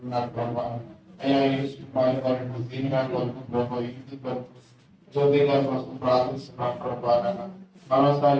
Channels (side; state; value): both; identical; correlation 1.00